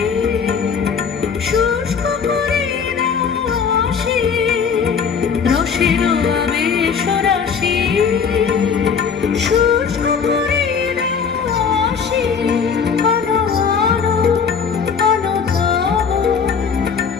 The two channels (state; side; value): quieter; right; 6.3 dB